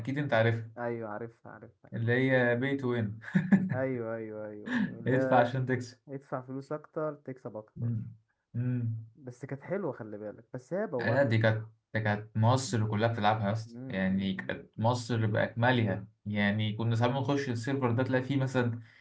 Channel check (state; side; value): identical; both; correlation 1.00